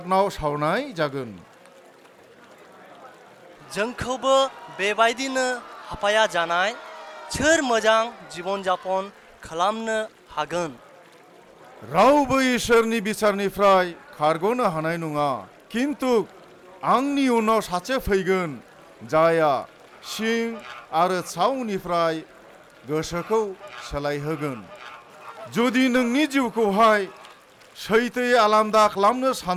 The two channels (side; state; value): both; identical; correlation 1.00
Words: सावनाय जागोन। जोंखौबो बेबायदिनो हापाया जानाय सोर मोजां जीवन जापन खालामनो हागोन? रावबो इसोरनि बिचारनिफ्राय खारग'नो हानाय नङा। किन्तु आंनि उनाव सासे फैगोन, जायहा सिं आरो सावनिफ्राय गोसोखौ सोलायहोगोन। जुदि नोंनि जिउखौहाय सैथोयै आलादा खालामनो